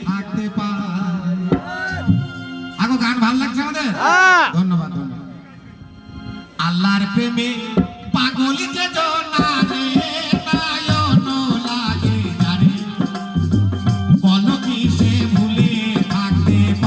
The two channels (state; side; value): identical; both; correlation 1.00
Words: থাকতে পারে? আগো গান ভালো লাগছে আমাদের, ধন্যবাদ ধন্যবাদ। আল্লাহর প্রেমে পাগল যে জনারে, নয়ন লাগে যারে, বলো কি সে ভুলে থাকতে